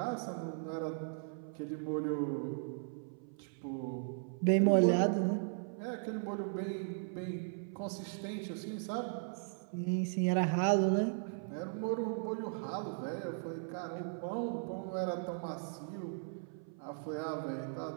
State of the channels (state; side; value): silent; left; 53 dB below the other